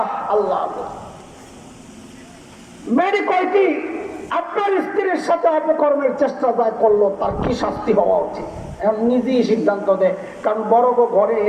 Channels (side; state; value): both; identical; correlation 1.00